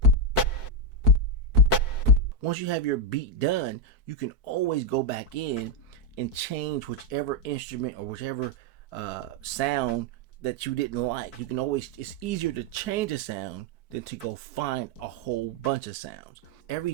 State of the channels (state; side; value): late; right; 4.6 ms